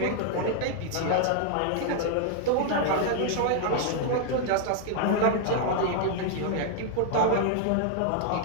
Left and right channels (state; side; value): different; both; correlation 0.00